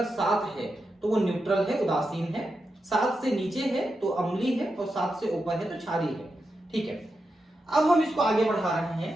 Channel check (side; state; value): both; normal; correlation 0.88